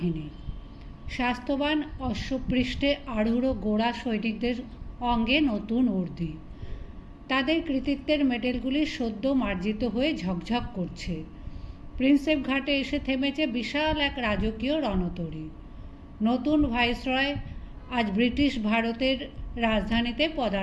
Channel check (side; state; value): both; identical; correlation 1.00